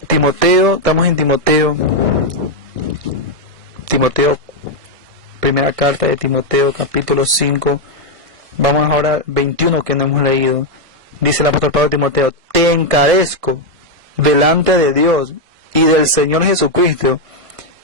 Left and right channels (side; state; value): left; late; 1.6 ms